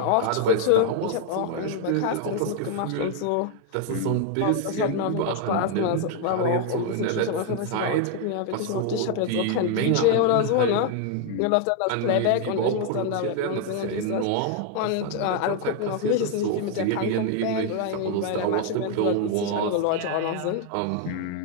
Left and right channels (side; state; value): both; different; correlation 0.00